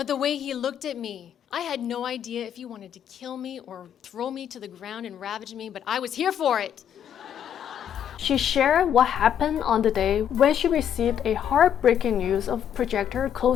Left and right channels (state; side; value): quieter; right; 9.3 dB